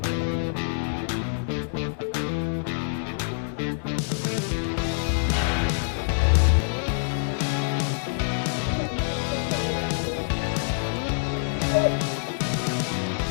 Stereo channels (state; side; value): silent; right; digital silence